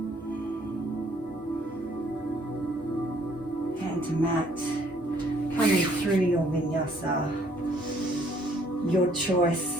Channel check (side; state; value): both; normal; correlation 0.64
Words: Hand to mat, coming through your vinyasa, your choice,